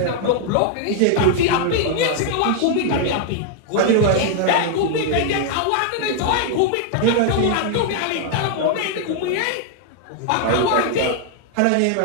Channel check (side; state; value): both; different; correlation 0.00